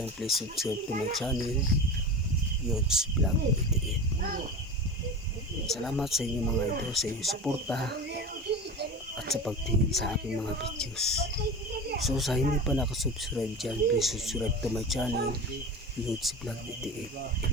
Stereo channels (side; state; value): both; normal; correlation 0.30